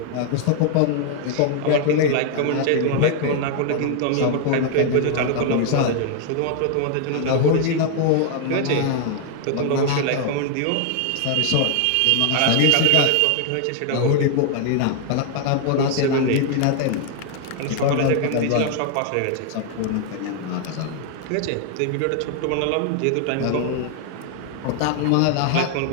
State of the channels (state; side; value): different; both; correlation 0.00